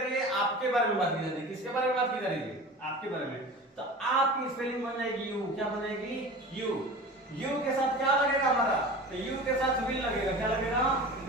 है? आपके बारे में बात की जा रही है। किसके बारे में बात की जा रही है? आपके बारे में। तो आपकी स्पेलिंग बन जाएगी यू। क्या बनेगी? यू। यू के साथ क्या लगेगा हमारा? तो यू के साथ विल लगेगा। क्या लगेगा?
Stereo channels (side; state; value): both; normal; correlation 0.35